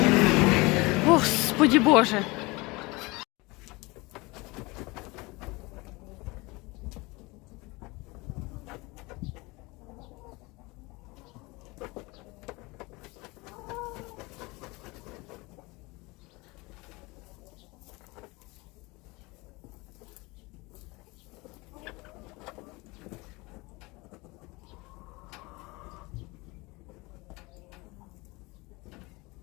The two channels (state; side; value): quieter; right; 24.3 dB